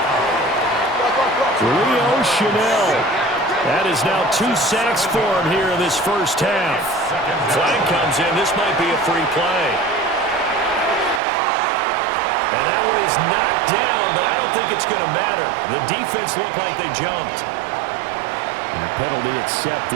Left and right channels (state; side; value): drops out; left; at 11.2 s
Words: Leo Chanel. That is now 2 sacks for him here in this first half. Flag comes in. This might be a free play. And that one is knocked down, but I don't think it's going to matter. The defense looked like they jumped. And a penalty